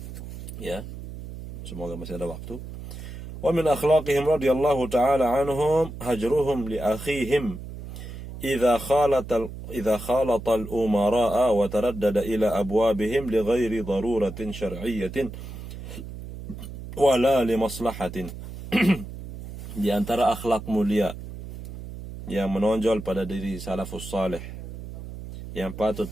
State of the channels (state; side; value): noise; right; hum, 11 dB below the sound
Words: Ya, semoga masih ada waktu. Wa min akhlaqihim radhiyallahu ta'ala anhum hajruhum li akhihim إذا خالط الأمراء وتردد إلى أبوابهم لغير ضرورة شرعية ولا لمصلحة. Di antara akhlak mulia yang menonjol pada diri salafus salih yang patut